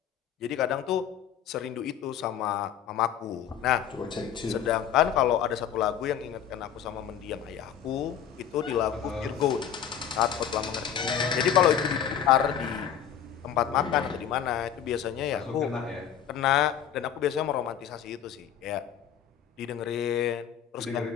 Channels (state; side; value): quieter; right; 9.2 dB